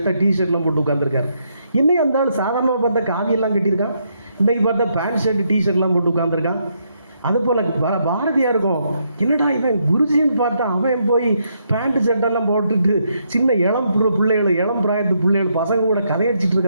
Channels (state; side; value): inverted; both; correlation -0.76